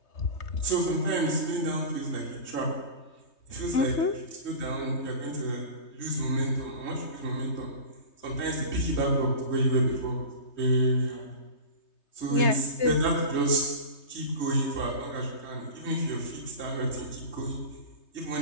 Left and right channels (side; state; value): right; late; 3.2 ms